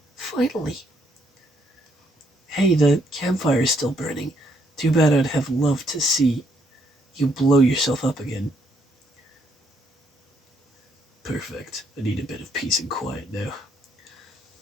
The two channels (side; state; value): both; normal; correlation 0.72